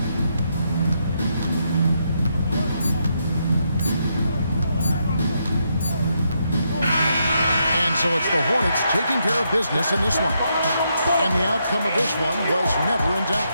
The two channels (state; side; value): inverted; both; correlation -0.79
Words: So it's the Hornets taking care of business in this one. And the outcome of this one was never in